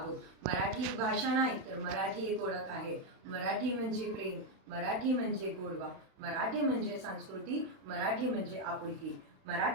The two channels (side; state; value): left; late; 31 ms